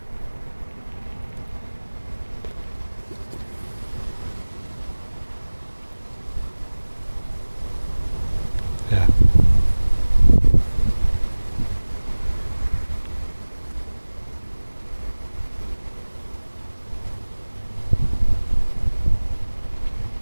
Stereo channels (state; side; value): inverted; both; correlation -1.00